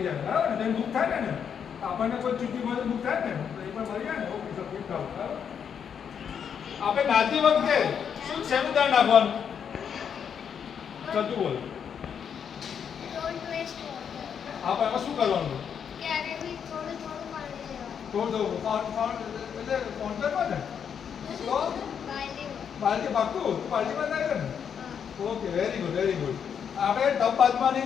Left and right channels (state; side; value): quieter; right; 7.6 dB